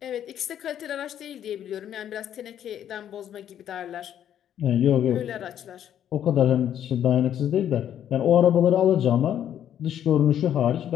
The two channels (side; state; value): right; quieter; 10.2 dB